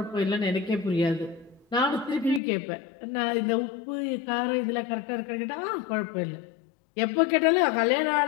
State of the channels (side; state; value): right; drops out; at 2.4 s